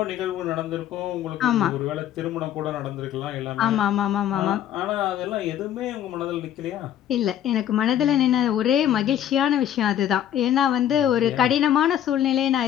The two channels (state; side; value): quieter; right; 10.8 dB